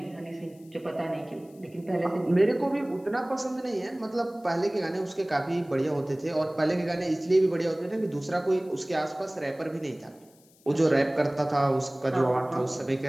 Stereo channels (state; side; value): noise; left; hiss, 30 dB below the sound